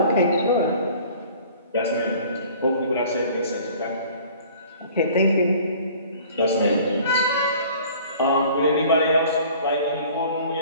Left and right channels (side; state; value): both; inverted; correlation -0.49